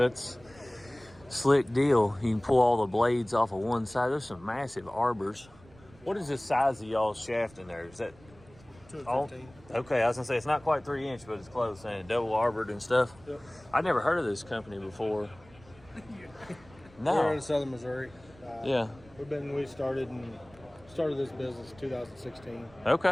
slick deal. You can pull all the blades off of one side. There's some massive arbors. What is the size of y'all's shaft in there? Is that 215. Okay, I was gonna say it's not quite 3 inch, but it's close, and double arbored and stuff. Yep. I'd never heard of this company before. No. We're in southern Missouri. Yeah. We started this business in 2016.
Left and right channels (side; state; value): right; noise; rumble, 25 dB below the sound